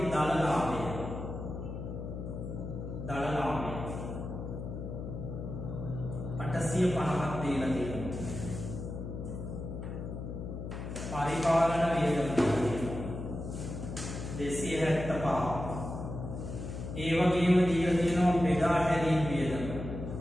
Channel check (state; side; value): noise; left; hum, 7 dB below the sound